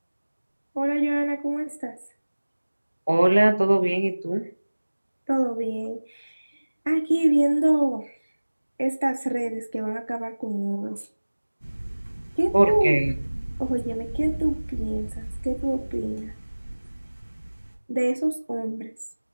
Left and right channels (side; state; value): both; inverted; correlation -1.00